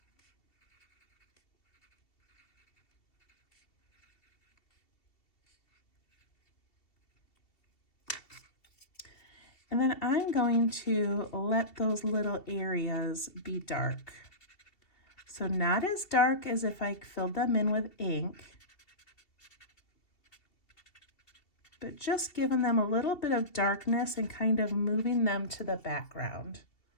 And then I'm going to let those little areas be dark. So not as dark as if I filled them in with ink, but just giving them a little bit of darkness and kind of moving them to the background.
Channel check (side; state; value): right; late; 2.7 ms